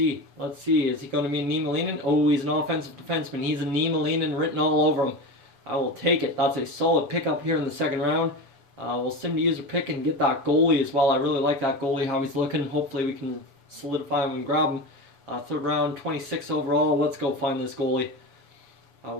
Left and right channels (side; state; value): left; late; 7.0 ms